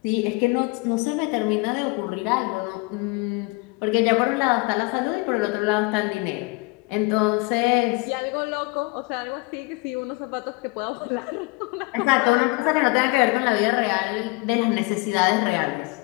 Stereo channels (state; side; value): quieter; right; 26.2 dB